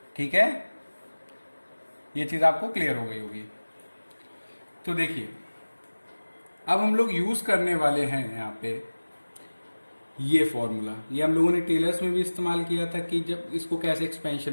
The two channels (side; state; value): both; inverted; correlation -1.00